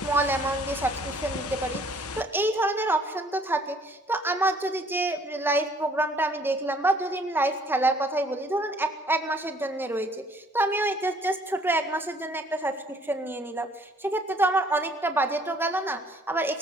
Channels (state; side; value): normal; both; correlation 0.59